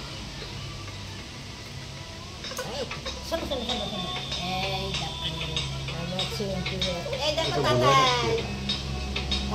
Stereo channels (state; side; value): identical; both; correlation 1.00